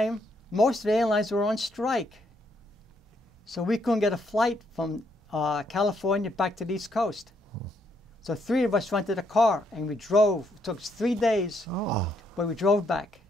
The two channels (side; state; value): both; normal; correlation 0.73